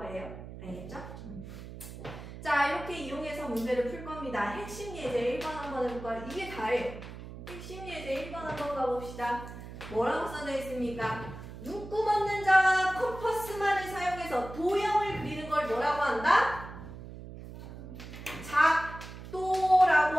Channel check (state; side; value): noise; right; hum, 12 dB below the sound